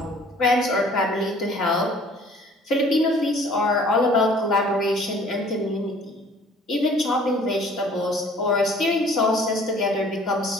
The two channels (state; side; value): normal; both; correlation 0.53